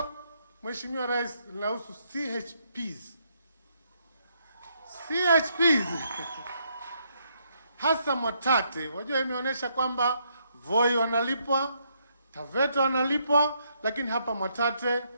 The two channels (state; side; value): inverted; both; correlation -0.74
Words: Mheshimiwa Rais linahusu CHPs. CHPs hasa Mwatate, wajua imeonyesha kwamba Voi wanalipwa, Taveta wanalipwa, lakini hapa Mwatate